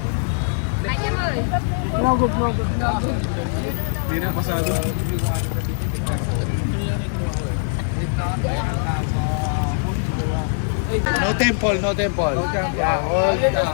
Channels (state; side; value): silent; right; 64 dB below the other